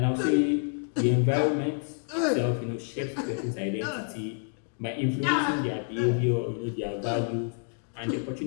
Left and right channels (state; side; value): silent; right; 57 dB below the other